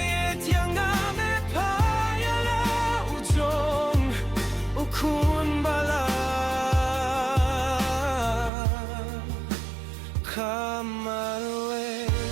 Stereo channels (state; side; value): drops out; left; at 8.5 s